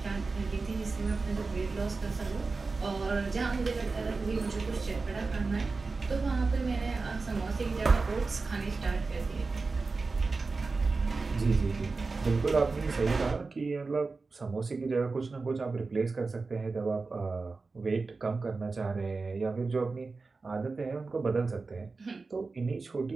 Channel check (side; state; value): left; quieter; 4.0 dB